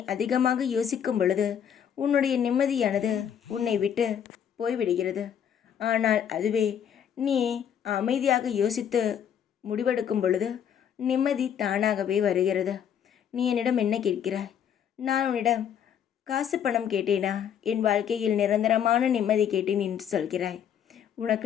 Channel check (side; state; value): right; quieter; 8.8 dB